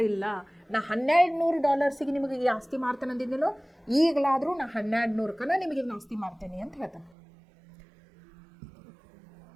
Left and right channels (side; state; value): left; drops out; at 7.2 s